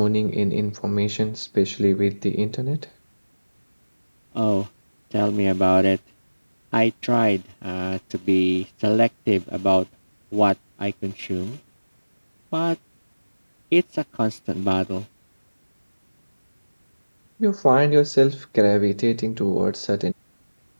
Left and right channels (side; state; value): both; inverted; correlation -1.00